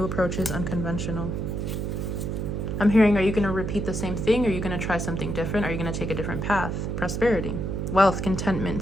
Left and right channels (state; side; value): noise; right; hum, 2 dB below the sound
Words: approaches, unconventional. I'm hearing, are you going to repeat the same thing? Are you going to try something different? Are you going to take a different path? Prosperity, wealth, contentment,